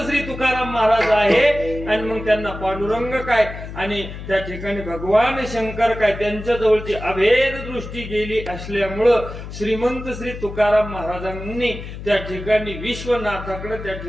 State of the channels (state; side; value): noise; left; hum, 10 dB below the sound